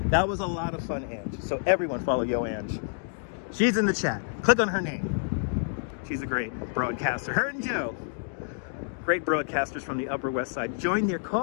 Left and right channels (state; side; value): silent; right; digital silence